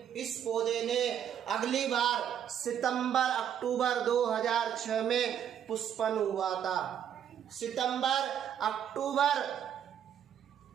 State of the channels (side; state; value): left; quieter; 9.3 dB